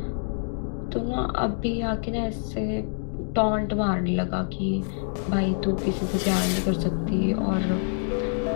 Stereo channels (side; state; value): right; silent; 61 dB below the other